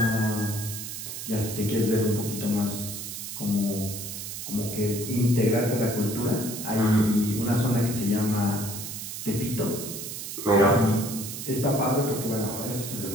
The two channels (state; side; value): noise; right; hiss, 7 dB below the sound